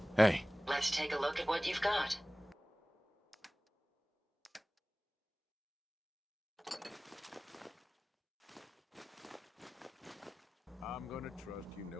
Hey. Let's take a look at what you've got. I'm gonna trust you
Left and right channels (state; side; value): normal; both; correlation 0.98